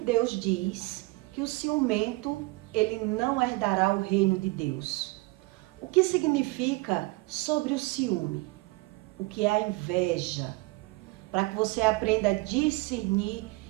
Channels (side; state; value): left; quieter; 23.7 dB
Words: diz que o ciumento ele não herdará o reino de Deus? O que significa sobre o ciúme? O que é a inveja? Para que você aprenda a discernir